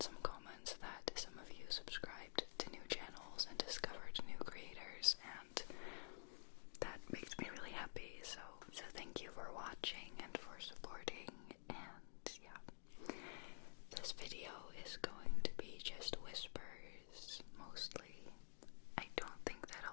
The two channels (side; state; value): right; silent; digital silence